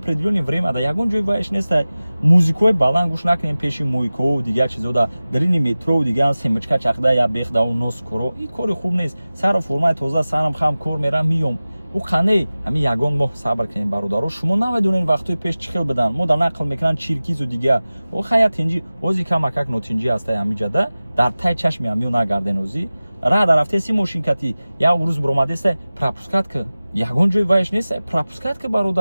время да ягон ҷои вайш нестай музикои баланд гӯш накунем пеши мойкоу дигар чизода дарини метро дигар семочка чахда я бехдау нос коро ин кори хуб нест сару формаи тоза сарам хам кор мерам миём у қане ҳами ягон моҳ сабр кунем бародаро шумо намедонем вақтои пеш чӣ хел бидан мо дар нақл мекунанд чиркизу дигар о хая тинҷи ози камакак нотинҷи ҳастай ҳамиҷада дар тай чашми ҳамиё нагарден ози рада рафтеси мошинкати як рӯз биромадестай пропускатка ягон ҷои вайш нестай пропускатка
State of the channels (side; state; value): both; inverted; correlation -0.97